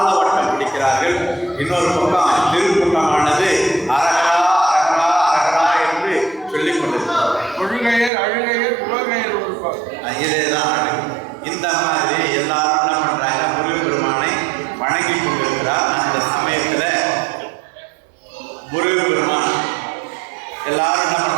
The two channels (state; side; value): drops out; left; at 8.1 s